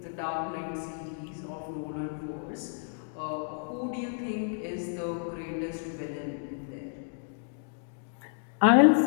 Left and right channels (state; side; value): silent; right; digital silence